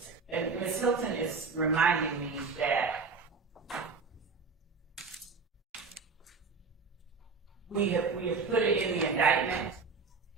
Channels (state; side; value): quieter; left; 4.6 dB